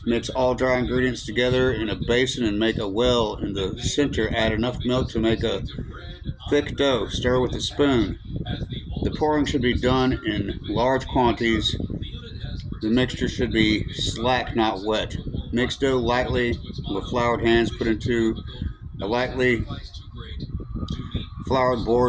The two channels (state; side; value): identical; both; correlation 1.00